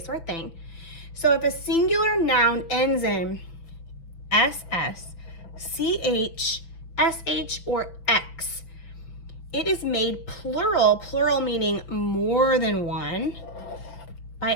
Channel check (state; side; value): late; right; 5.8 ms